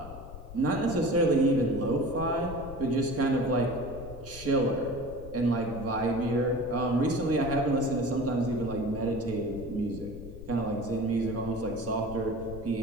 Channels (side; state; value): left; noise; rumble, 13 dB below the sound